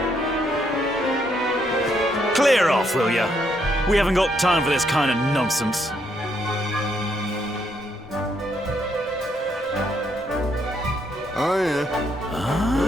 Clear off, will ya? We haven't got time for this kind of nonsense. Oh, yeah.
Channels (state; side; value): normal; both; correlation 0.73